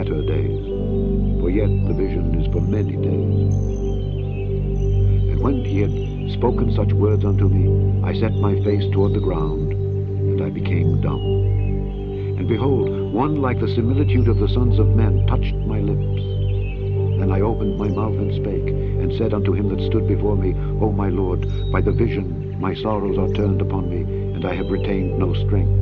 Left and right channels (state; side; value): identical; both; correlation 1.00